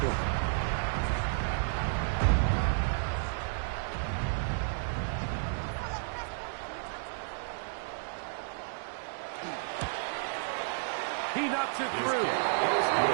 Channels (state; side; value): silent; left; digital silence